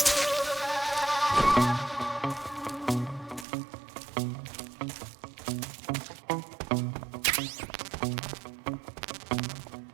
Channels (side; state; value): left; drops out; at 3.5 s